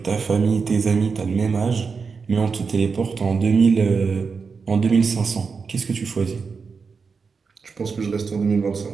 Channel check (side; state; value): left; quieter; 5.2 dB